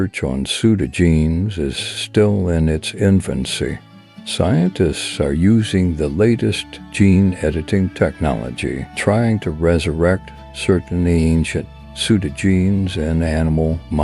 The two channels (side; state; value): both; identical; correlation 1.00